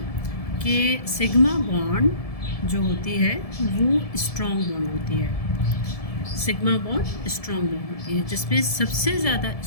कि सिग्मा बॉन्ड जो होती है वो स्ट्रॉन्ग बॉन्ड होती है। सिग्मा बॉन्ड स्ट्रॉन्ग बॉन्ड होती है जिसमें सबसे ज़्यादा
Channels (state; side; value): late; right; 1.7 ms